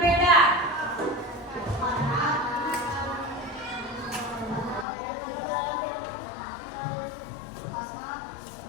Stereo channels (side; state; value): right; drops out; at 4.9 s